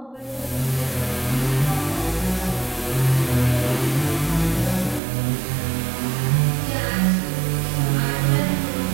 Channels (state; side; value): drops out; left; at 5.0 s